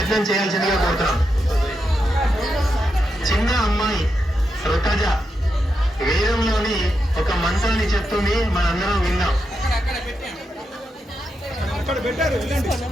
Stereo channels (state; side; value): normal; both; correlation 0.85